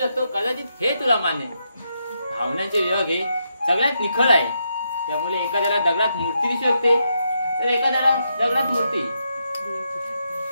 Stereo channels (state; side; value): inverted; both; correlation -0.81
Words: कदाचित हे तुला मान्य भावनांचे विभाग हे सगळ्यात निखळ आहे त्यामुळे एखाद्याला दगडात मूर्ती दिसू शकते तर एखाद्याला दगडात मूर्ती